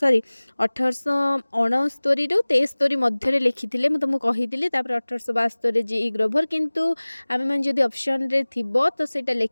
1869 रु 73 मध्य लिखिथिले। मु तुमको कहिथिले। तापर 1872 जी ग्रोभर, किंतु आमे मन जदी ऑप्शन रे थिबो तो सेटा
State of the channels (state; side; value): inverted; both; correlation -1.00